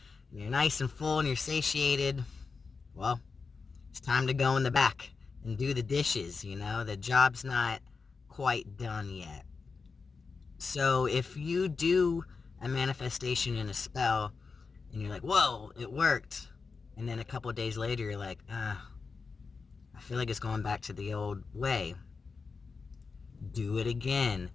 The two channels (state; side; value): quieter; right; 4.8 dB